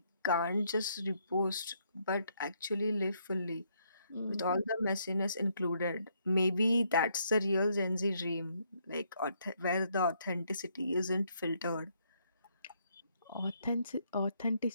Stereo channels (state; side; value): inverted; both; correlation -0.73